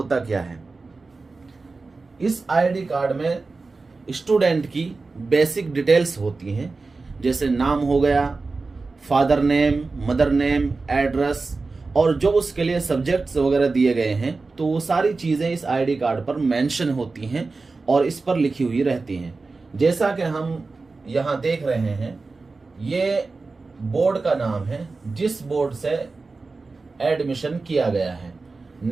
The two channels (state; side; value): quieter; left; 3.9 dB